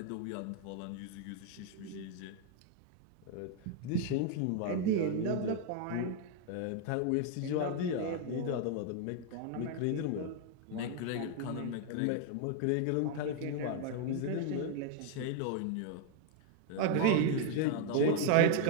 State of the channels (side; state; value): both; different; correlation 0.00